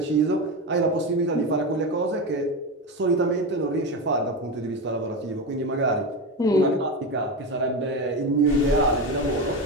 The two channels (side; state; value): both; normal; correlation 0.18